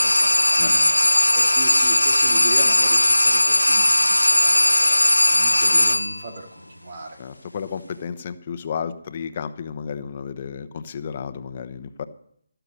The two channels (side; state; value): both; inverted; correlation -0.98